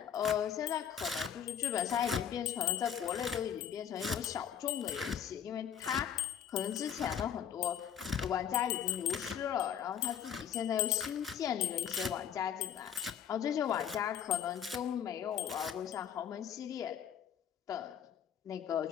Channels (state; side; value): quieter; right; 8.9 dB